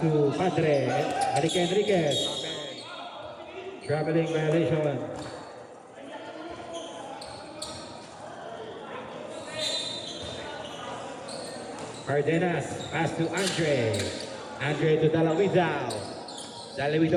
Padre. Enriquez. Traveling violation. Cardenas. Pass to Andre. Andre to Dalawidao.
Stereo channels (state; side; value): identical; both; correlation 1.00